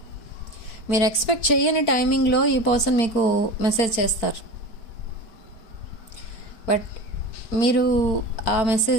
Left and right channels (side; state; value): right; late; 4.4 ms